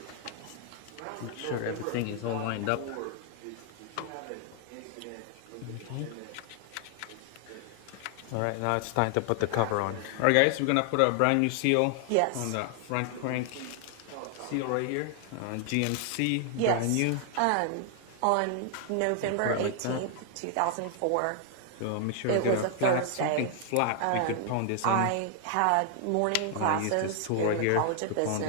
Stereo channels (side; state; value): both; different; correlation 0.00